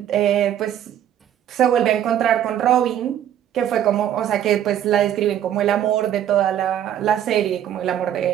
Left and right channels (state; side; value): quieter; left; 10.6 dB